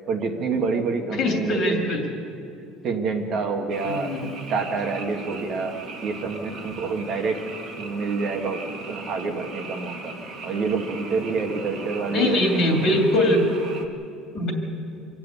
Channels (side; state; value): both; normal; correlation 0.48